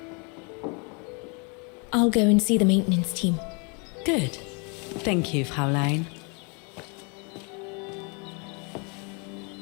I'll go and see the maintenance team. Good. Thank you, Fraulein.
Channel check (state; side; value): quieter; right; 33.7 dB